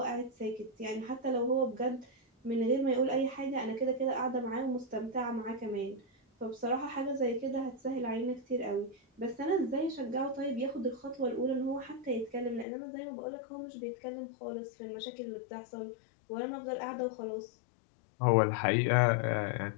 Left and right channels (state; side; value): drops out; right; at 12.7 s